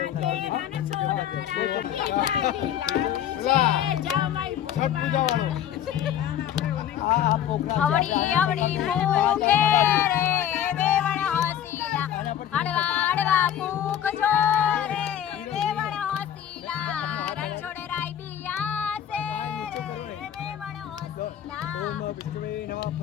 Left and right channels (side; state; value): right; quieter; 10.5 dB